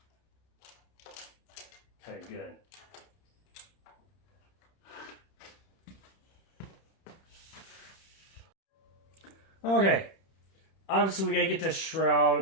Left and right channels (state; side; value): late; right; 31 ms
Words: Okay, good. Okay, obviously we gotta get this